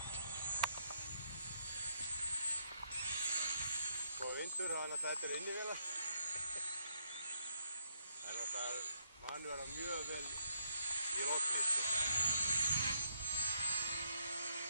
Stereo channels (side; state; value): both; inverted; correlation -0.77